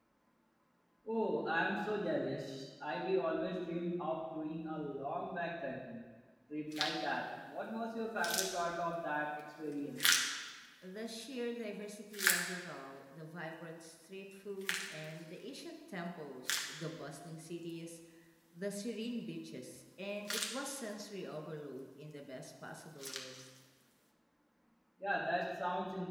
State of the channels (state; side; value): identical; both; correlation 1.00